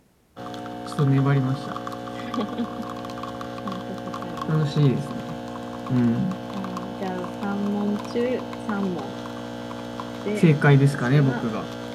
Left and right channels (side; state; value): both; identical; correlation 1.00